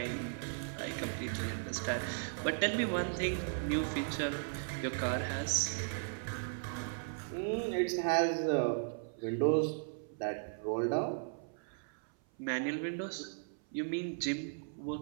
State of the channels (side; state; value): left; silent; 53 dB below the other